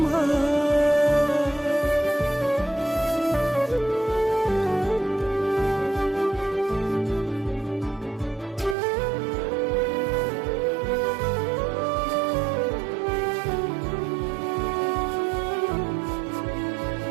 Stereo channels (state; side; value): drops out; left; at 8.8 s